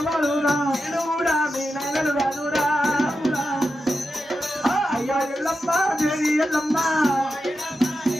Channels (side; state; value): both; normal; correlation 0.89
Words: తెలుగు కూడా మీ నైనలు కాదురా అయ్యా ఎల్లమ్మ దేవి ఎల్లమ్మ